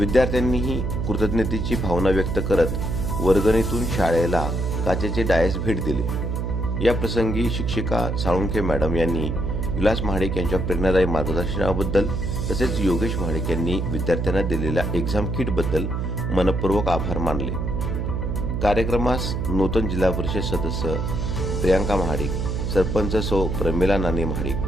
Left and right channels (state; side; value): noise; right; hum, 1 dB below the sound